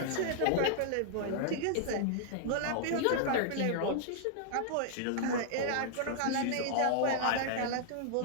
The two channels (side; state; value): both; different; correlation -0.01